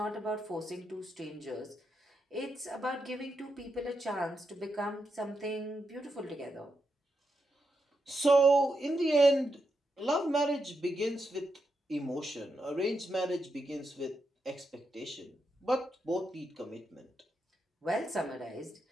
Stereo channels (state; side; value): normal; both; correlation 0.84